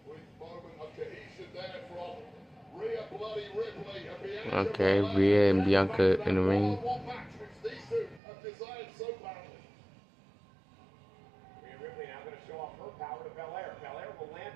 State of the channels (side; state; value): left; drops out; at 8.2 s